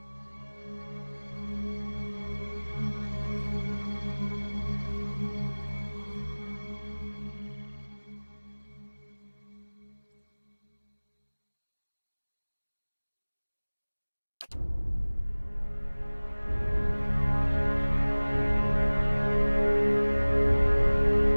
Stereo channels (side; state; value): both; inverted; correlation -1.00